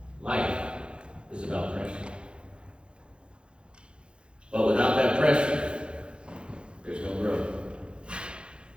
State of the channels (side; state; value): left; late; 0.055 ms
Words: Life is about pressure. But without that pressure, there's no growth.